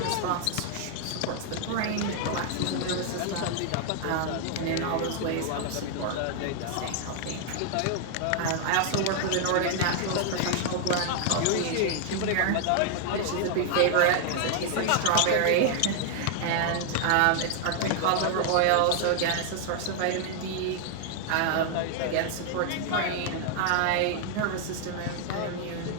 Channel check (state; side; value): different; both; correlation 0.00